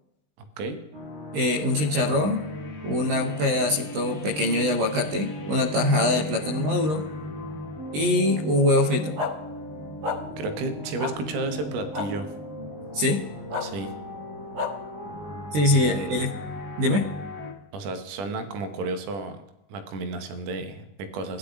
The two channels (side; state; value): left; late; 20 ms